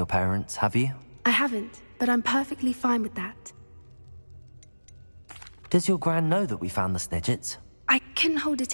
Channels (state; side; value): inverted; both; correlation -1.00